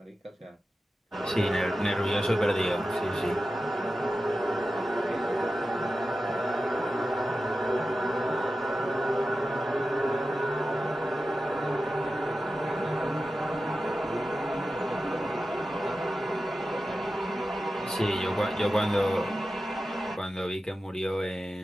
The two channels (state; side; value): normal; both; correlation 0.92